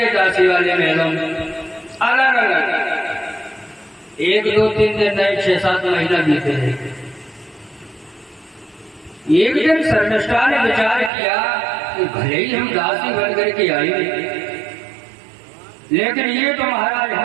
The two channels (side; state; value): left; drops out; at 11.1 s